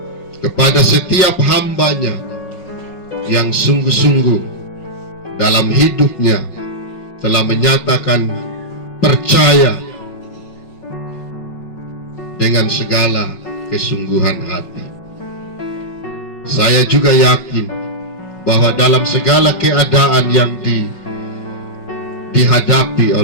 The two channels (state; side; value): late; right; 5.4 ms